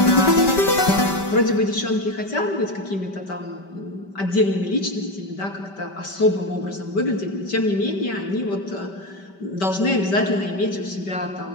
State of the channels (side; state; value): right; late; 5.2 ms